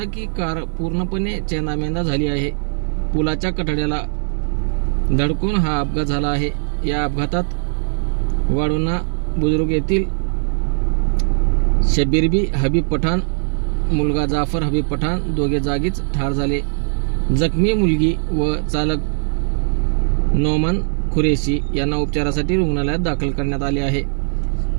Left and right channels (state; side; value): silent; left; digital silence